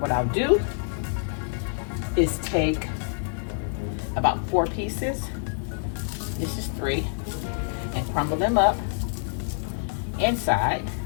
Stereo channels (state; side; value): silent; right; digital silence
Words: I'll do is take about 4 pieces, this is 3, and crumble them up inside,